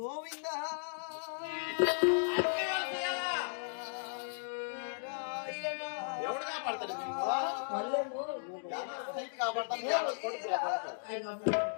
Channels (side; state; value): right; silent; digital silence